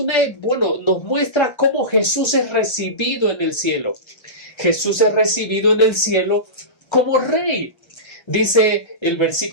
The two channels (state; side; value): late; right; 1.3 ms